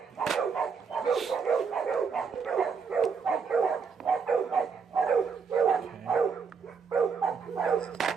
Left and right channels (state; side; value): quieter; left; 5.8 dB